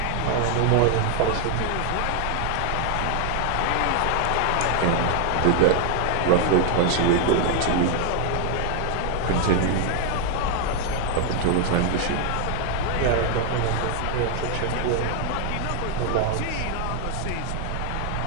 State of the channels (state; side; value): different; both; correlation 0.00